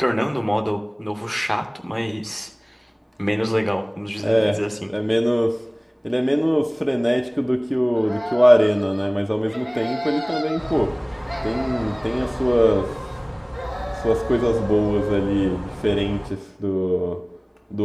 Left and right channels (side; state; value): both; identical; correlation 1.00